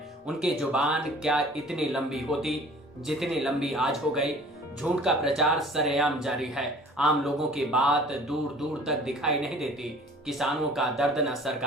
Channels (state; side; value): normal; both; correlation 0.49